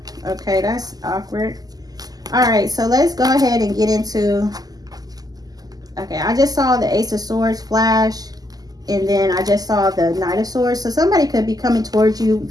Okay, that's awkward. All right, so let's go ahead and get into, okay, I just saw the Ace of Swords flash, and then I just saw the Knight of Swords. So somebody could be coming towards you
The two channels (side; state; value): left; late; 0.18 ms